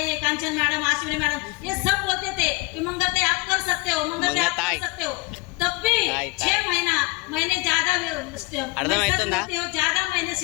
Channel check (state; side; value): quieter; right; 25.9 dB